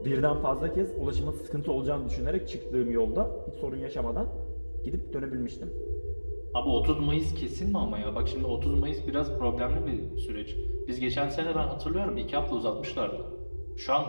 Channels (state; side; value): inverted; both; correlation -1.00